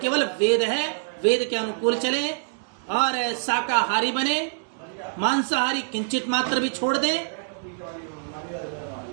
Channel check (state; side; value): silent; left; digital silence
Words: वेद है। वेद के अनुकूल चले और शाकाहारी बने, मांसाहारी किंचित मात्र भी छोड़ दें,